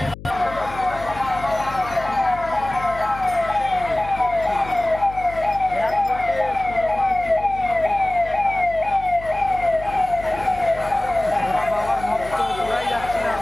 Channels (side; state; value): left; noise; hum, 14 dB below the sound